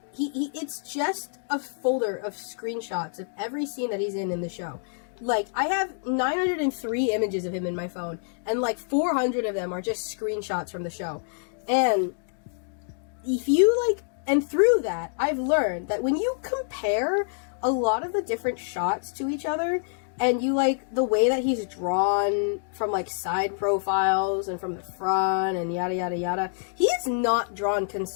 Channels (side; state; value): right; silent; digital silence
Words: It's just a folder of screenshots of every scene that he's in the show. Like, I have 903 images of him in my phone, and, like, 400 of them are just screenshots from the show. And if you, like... And through that, I've learned that when you compare a lot of the different shots to each other, and you like the way that he's drawn from like side profiles and from the front and yada yada yada, he is not drawn